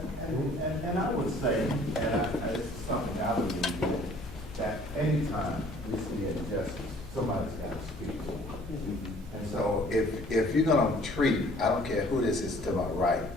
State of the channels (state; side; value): normal; both; correlation 0.55